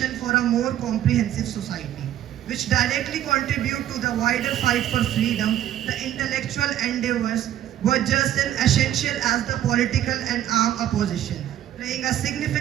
for a more comprehensive society, which directly contribute to the wider fight for freedom. The intellectual endeavors were just as essential as the political and armed opposition, playing a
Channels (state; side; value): quieter; left; 11.9 dB